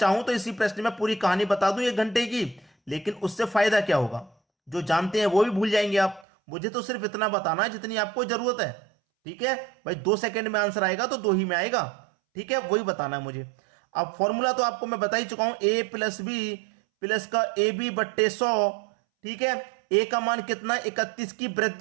तो इसी प्रश्न में पूरी कहानी बता दूं 1 घंटे की, लेकिन उससे फायदा क्या होगा? जो जानते हैं वो भी भूल जाएंगे आप। मुझे तो सिर्फ इतना बताना है जितनी आपको जरूरत है। ठीक है भाई, 2 सेकंड में आंसर आएगा तो 2 ही में आएगा। ठीक है, वही बताना है मुझे। अब फॉर्मूला तो आपको मैं बता ही चुका हूं, ए प्लस बी प्लस का ए बी बट्टे 100। ठीक है, ए का मान कितना? 31 की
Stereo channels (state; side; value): drops out; left; at 6.2 s